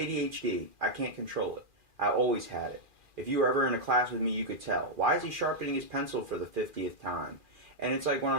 I can't control it. I always had it. If you were ever in a class with me, you could tell. Why is he sharpening his pencil for the 50th time? And it's like when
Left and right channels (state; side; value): late; left; 2.4 ms